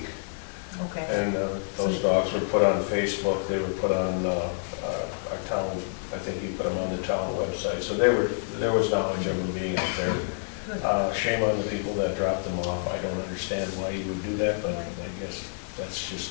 Okay. And those dogs were put on Facebook. They were put on our town. I think you put them on the town website. So there was knowledge of them being out there. Shame on the people that dropped them off. I don't understand why you would do that, but I guess that's just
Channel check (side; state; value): right; silent; digital silence